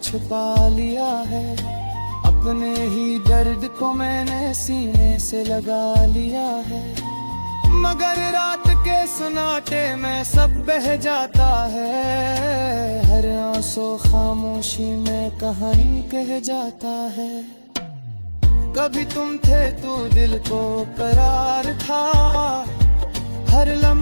लिया है, अपने ही दर्द को मैंने सीने से लगा लिया है। मगर रात के सन्नाटे में सब बह जाता है, हर आंसू खामोशी में कहानी कह जाता है। कभी तुम थे तो दिल को करार था, हर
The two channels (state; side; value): inverted; both; correlation -1.00